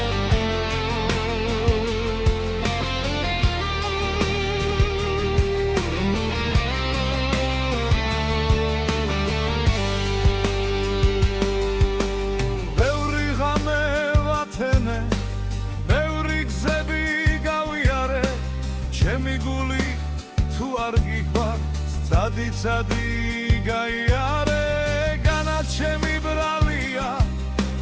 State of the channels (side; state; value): both; identical; correlation 1.00